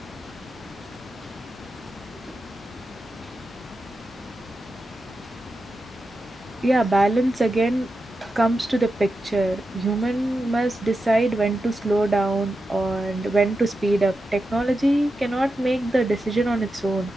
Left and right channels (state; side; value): normal; both; correlation 0.89